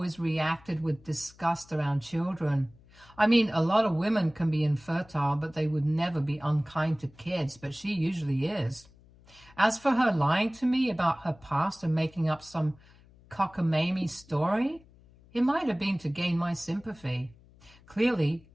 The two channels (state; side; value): noise; left; hum, 26 dB below the sound